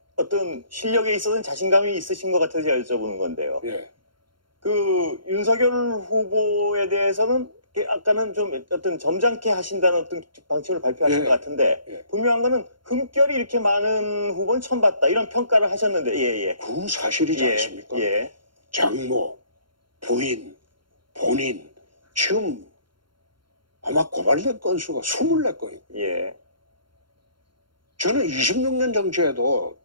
있어서는 자신감이 있으신 것 같아서 제가 여쭤보는 건데요. 예. 그 윤석열 후보에 대해서는 아까는 좀 어떤 점잖게 하신다는 어떤 방침을 발표하신 예. 것 같은데 예. 분명한 거는 흠결이 이렇게 많은 후보는 처음 봤다 이런 평가를 하셨는데 예예. 그건 사실이지 예. 않습니까? 예. 장모, 부인, 본인 지금 아마 고발된 건수가 24건이고 예. 저는 26년 정치에도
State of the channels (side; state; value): left; late; 0.72 ms